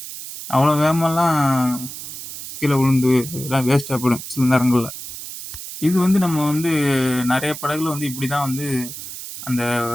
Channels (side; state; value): right; noise; hiss, 10 dB below the sound